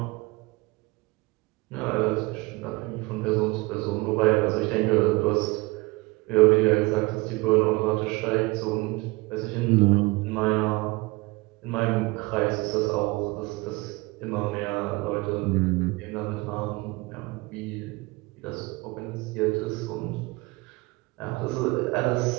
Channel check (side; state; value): left; quieter; 24.0 dB